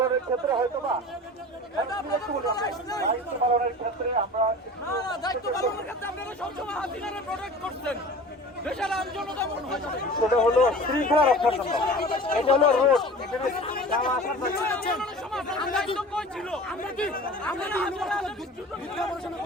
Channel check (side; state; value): both; normal; correlation 0.39